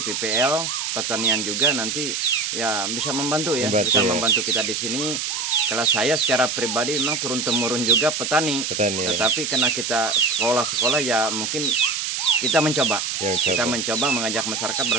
PPL pertanian juga nanti ya bisa membantu ya, membantu kita di sini. Kalau saya secara pribadi memang turun temurun juga petani. Tetapi karena kita sekolah ya mungkin kita mencoba. Kita mencoba mengajak masyarakat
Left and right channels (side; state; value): right; noise; hiss, 2 dB below the sound